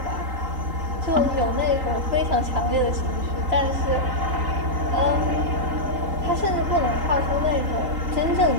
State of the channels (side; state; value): left; late; 3.9 ms